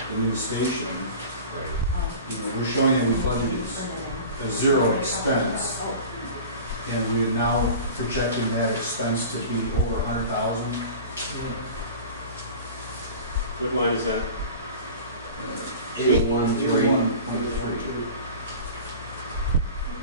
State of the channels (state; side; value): inverted; both; correlation -0.37